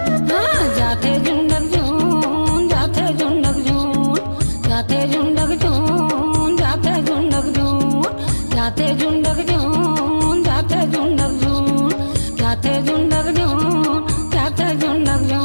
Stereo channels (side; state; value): both; inverted; correlation -1.00